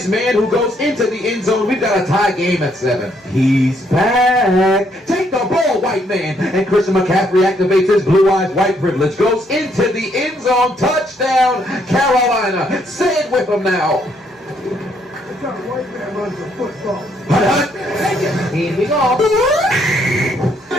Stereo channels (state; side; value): normal; both; correlation 0.71